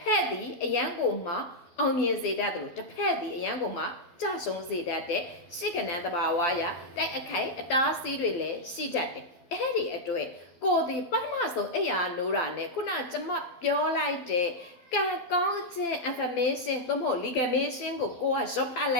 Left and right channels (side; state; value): right; late; 12 ms